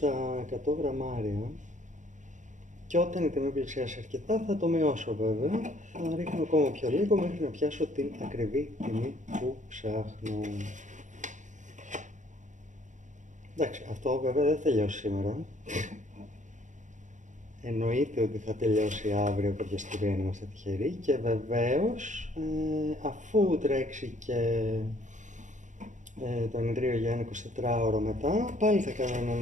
100 γραμμάρια. Και όταν η τιμή πλησιάσει αρκετά θα το μειώσω βέβαια, θα ρίχνω ακόμα πιο λίγο μέχρι να πιάσω την ακριβή τιμή που ψάχνω. Εντάξει, αυτό βέβαια δεν θα τελειώσει σήμερα. Εννοείται ότι θα τελειώσει αύριο κάποια στιγμή αν είμαστε τυχεροί και βεβαίως αφού τρέξει και το ενιδρίο για ένα 24ωρο μετά, πάλι θα κάνω έναν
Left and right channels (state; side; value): late; left; 0.36 ms